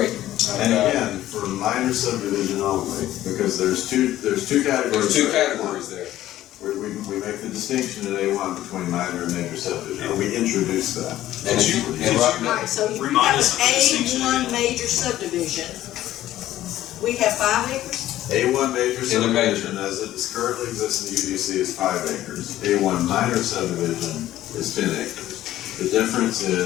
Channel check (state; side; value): quieter; right; 13.9 dB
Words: And again, for minor subdivision only, because there's two categories. There's 2 for categories A1. there. We make the distinction in A1 between minor and major subdivision, or we introduce that. And if you, and right now, Alright, so if you Remind have us of an the distinction A1 again. major subdivision, we have 5 acres? A1 major In a major. subdivision, as it is currently exists in the UDC, is 5 acres. A1 minor subdivision is 10 acres. The difference